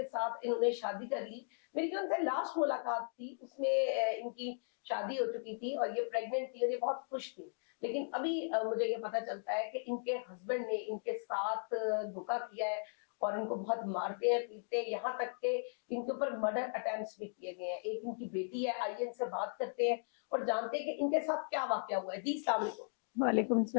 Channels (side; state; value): right; silent; digital silence